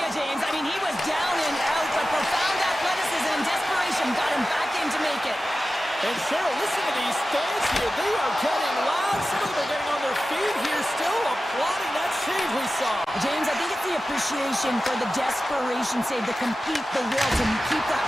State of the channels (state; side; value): normal; both; correlation 0.94